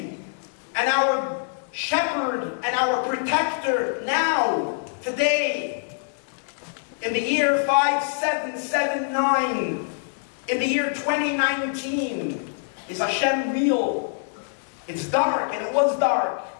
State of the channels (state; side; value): silent; right; digital silence